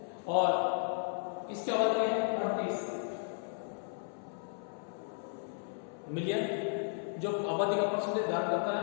और इसकी आबादी है 38 मिलियन, जो आबादी का परसेंटेज धारण करता है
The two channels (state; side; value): silent; right; 55 dB below the other